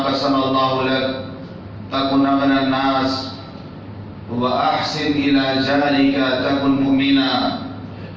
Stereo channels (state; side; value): identical; both; correlation 1.00